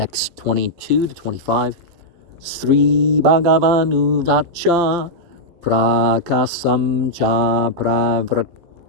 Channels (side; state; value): left; late; 12 ms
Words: 22-25. Sri Bhagavanu Vacha Prakasam Cha